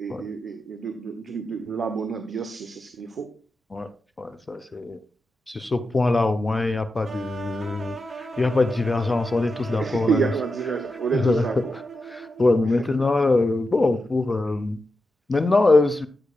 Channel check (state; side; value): normal; both; correlation 0.89